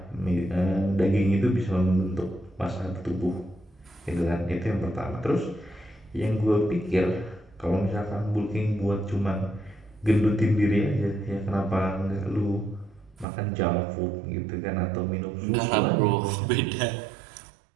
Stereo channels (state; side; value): drops out; left; at 13.2 s